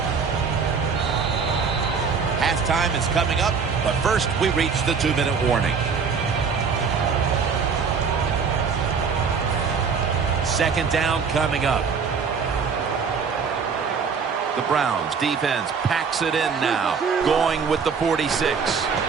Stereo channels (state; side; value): quieter; left; 5.7 dB